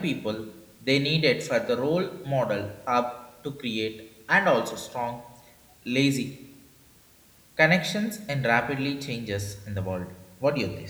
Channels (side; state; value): both; identical; correlation 1.00